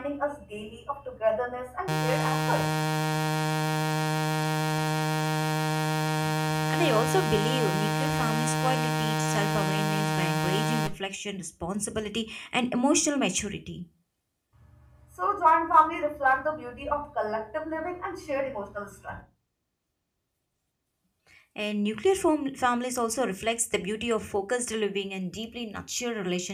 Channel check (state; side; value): identical; both; correlation 1.00